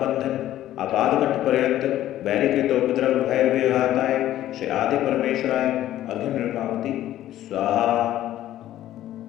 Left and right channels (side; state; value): right; quieter; 13.2 dB